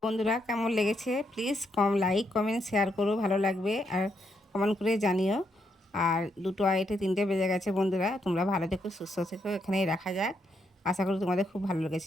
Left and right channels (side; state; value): both; normal; correlation 0.78